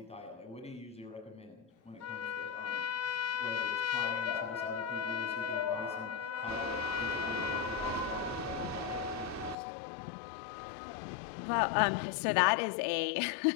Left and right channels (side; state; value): right; drops out; at 9.6 s